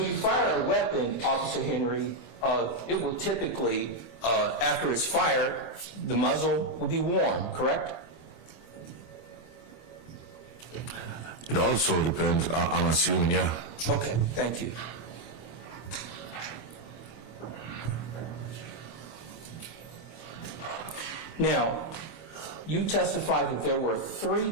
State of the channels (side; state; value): right; late; 25 ms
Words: you fire a weapon, Officer Henry, it will typically, after it's fired, the muzzle will be worn, correct? It also depends, I'm assuming, yeah. Okay, thank you. Now, you testified that there were 3